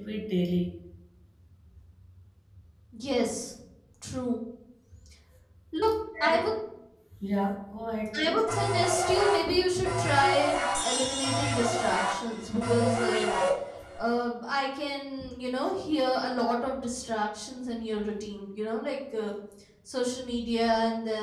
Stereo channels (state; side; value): identical; both; correlation 1.00